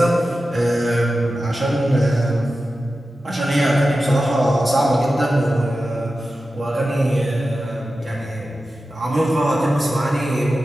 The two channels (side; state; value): both; normal; correlation 0.93